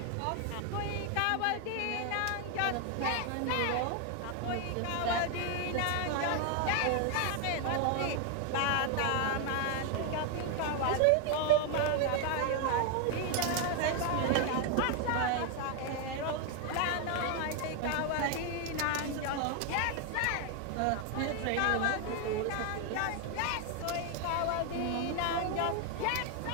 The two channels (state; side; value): different; both; correlation 0.01